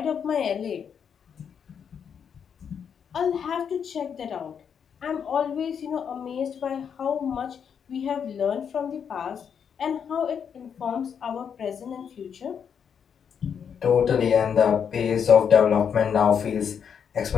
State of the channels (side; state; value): right; quieter; 7.4 dB